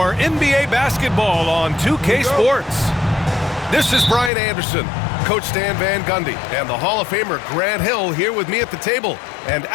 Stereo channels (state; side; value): drops out; right; at 4.3 s